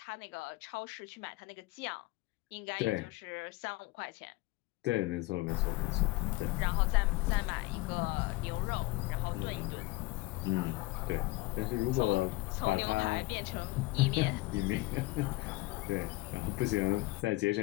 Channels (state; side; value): quieter; right; 21.0 dB